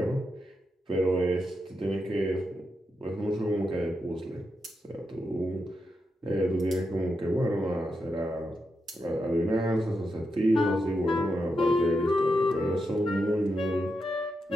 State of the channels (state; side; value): normal; both; correlation 0.85